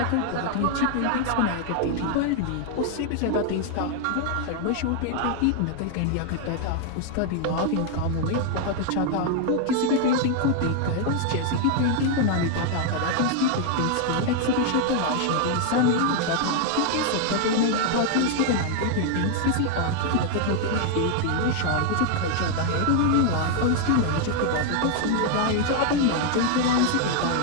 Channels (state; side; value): different; both; correlation 0.00